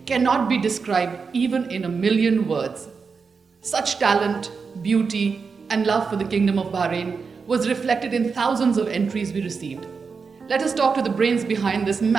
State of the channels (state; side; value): quieter; left; 5.2 dB